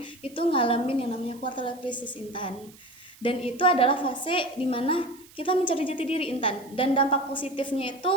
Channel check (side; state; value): right; noise; hiss, 24 dB below the sound